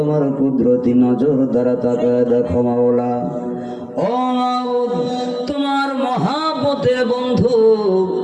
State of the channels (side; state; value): both; identical; correlation 1.00